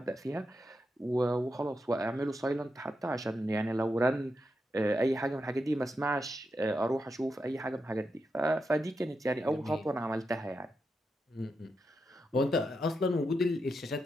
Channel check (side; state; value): both; normal; correlation 0.86